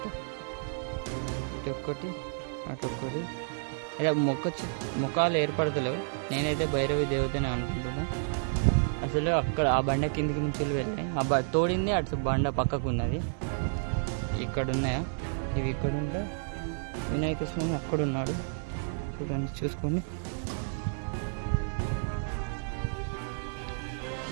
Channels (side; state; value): left; silent; digital silence